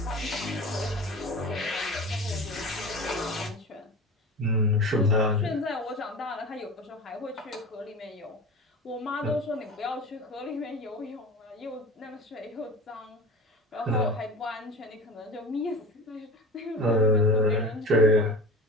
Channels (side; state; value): both; normal; correlation 0.34